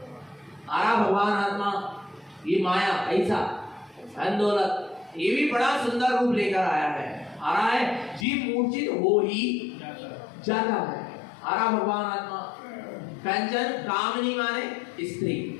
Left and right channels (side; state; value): right; drops out; at 8.2 s